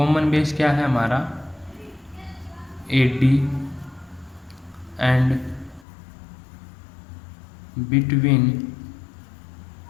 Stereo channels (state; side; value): drops out; right; at 5.9 s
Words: base क्या है हमारा, AD। And between